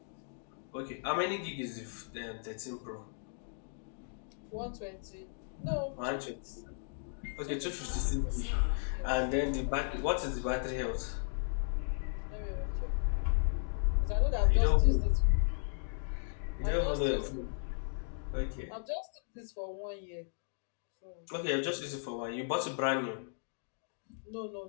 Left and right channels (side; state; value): right; silent; digital silence